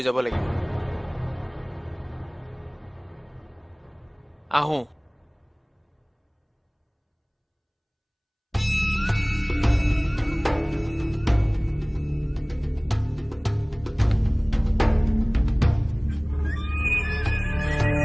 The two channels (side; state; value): both; identical; correlation 1.00